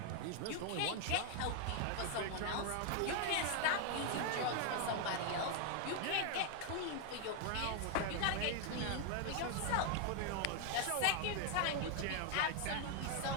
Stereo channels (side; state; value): both; different; correlation 0.00